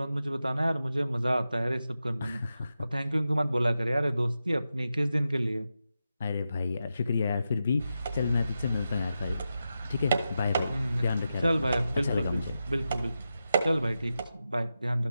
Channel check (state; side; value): inverted; both; correlation -0.89